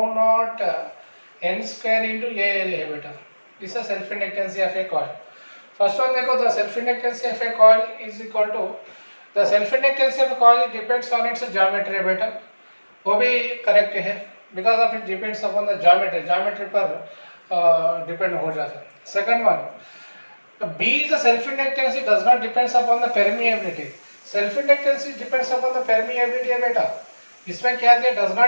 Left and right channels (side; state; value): both; inverted; correlation -1.00